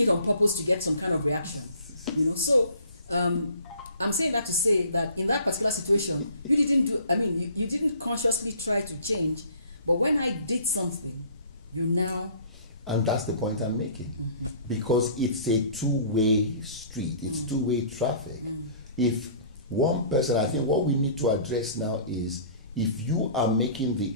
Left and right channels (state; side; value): inverted; both; correlation -0.51